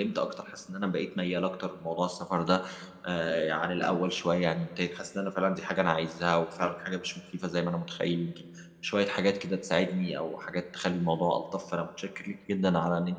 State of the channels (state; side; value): identical; both; correlation 1.00